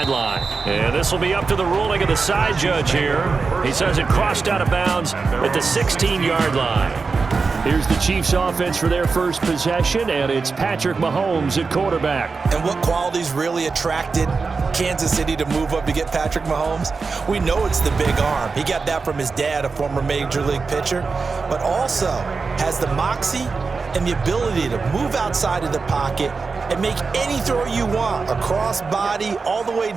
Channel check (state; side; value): quieter; left; 4.5 dB